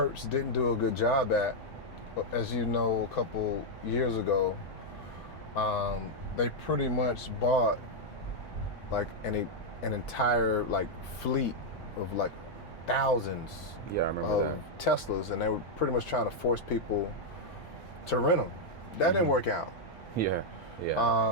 didn't do a good job at. As you know, a couple years ago, they pretty much bought like an entire like fleet of like thousands Yeah, I remember of Teslas, and they were pretty much trying to force people to rent them. That didn't work out. that.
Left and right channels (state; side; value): late; right; 1.8 ms